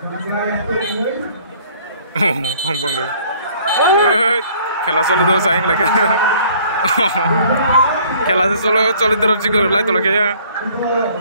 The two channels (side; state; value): both; inverted; correlation -0.57